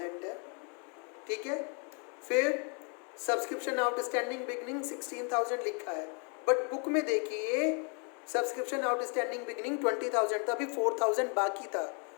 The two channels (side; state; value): right; quieter; 37.1 dB